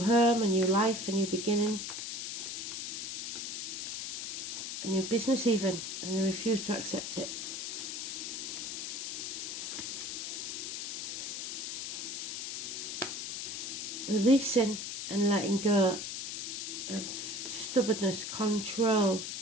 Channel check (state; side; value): noise; left; hiss, 4 dB below the sound